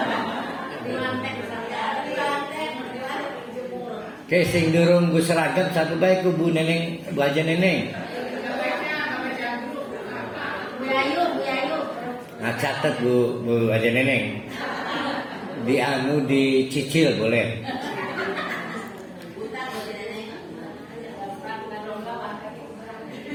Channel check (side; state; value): both; identical; correlation 1.00